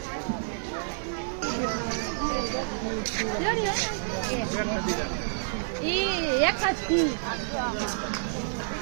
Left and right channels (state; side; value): silent; left; digital silence